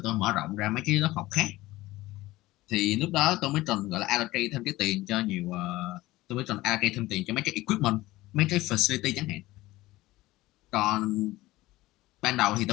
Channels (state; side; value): quieter; right; 18.1 dB